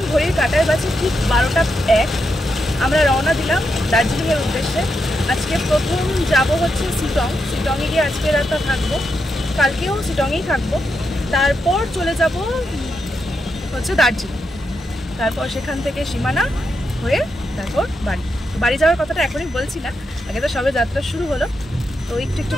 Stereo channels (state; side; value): normal; both; correlation 0.84